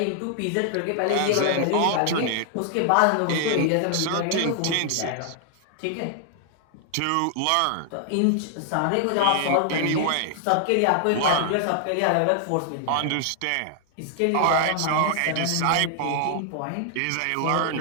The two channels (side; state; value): both; different; correlation 0.00